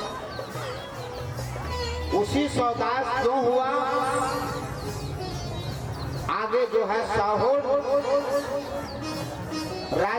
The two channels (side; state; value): both; identical; correlation 1.00